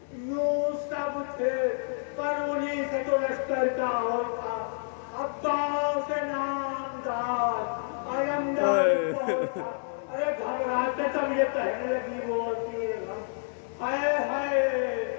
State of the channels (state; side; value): silent; right; digital silence